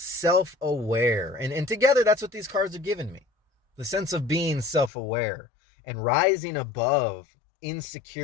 And together, that's what these cards are giving me. The sense of being self-aware and rising above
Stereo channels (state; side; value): drops out; right; at 4.9 s